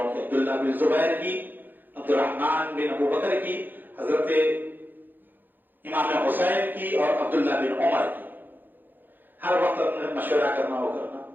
کی. عبداللہ بن زبیر کی, عبد الرحمن بن ابو بکر کی, حضرت امام حسین کی, اور عبداللہ بن عمر کی. ہر وقت اپنے مشورہ کرنا ہو کرنا.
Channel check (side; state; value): left; late; 0.090 ms